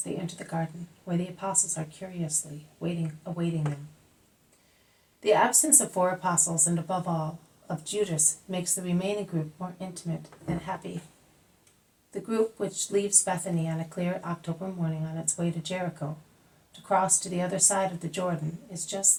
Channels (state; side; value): identical; both; correlation 1.00